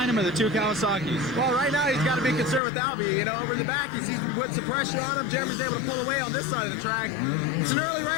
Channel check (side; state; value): right; drops out; at 2.6 s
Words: him or the 2 Kawasaki's? Well, right now he's got to be concerned with Albie. You know, over in the back, he's putting some pressure on him. Jeremy's able to pull away on this side of the track. It's an early